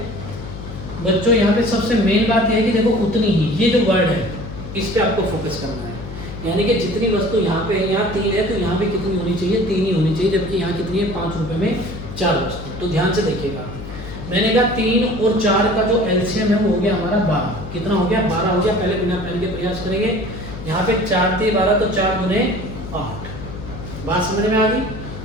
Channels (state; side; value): noise; left; hum, 10 dB below the sound